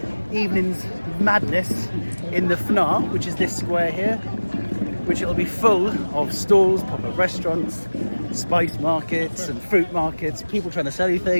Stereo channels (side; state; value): both; inverted; correlation -1.00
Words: evening's madness in the Fnaa, which is this square here, which it'll be full of stalls, pop-up restaurants, spice markets and fruit markets, people trying to sell you